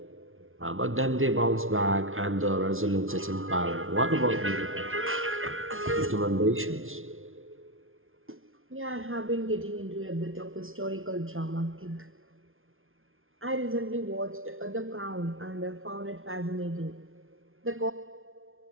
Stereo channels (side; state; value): left; late; 0.60 ms